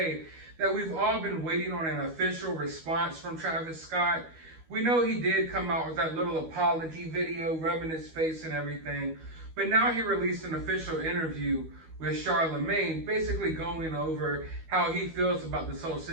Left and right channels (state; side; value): late; left; 12 ms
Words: that we've all been waiting on an official response from Travis Scott. We know he did come out with that little apology video, rubbing his face and everything, but now he released an official interview with Charlemagne, basically going over how he feels about this whole